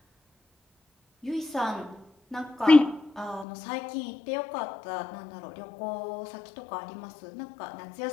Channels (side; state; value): right; drops out; at 3.5 s